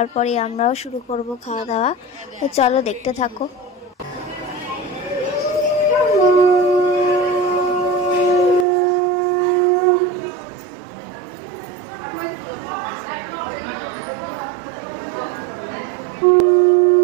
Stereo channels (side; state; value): left; drops out; at 8.7 s